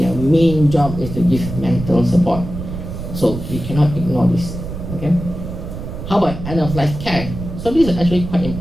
main job is to give mental support. So we cannot ignore this. Okay. How about end of life care? So this is actually quite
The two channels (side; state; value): right; noise; rumble, 8 dB below the sound